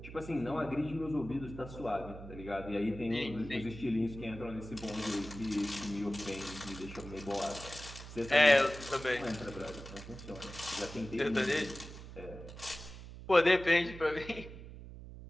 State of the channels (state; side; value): noise; right; hum, 13 dB below the sound